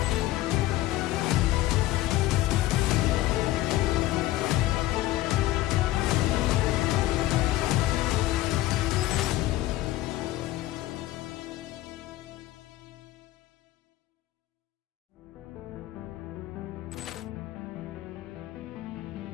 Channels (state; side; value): quieter; right; 16.2 dB